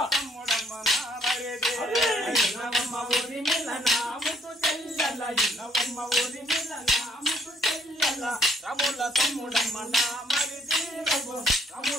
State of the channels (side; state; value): both; normal; correlation 0.66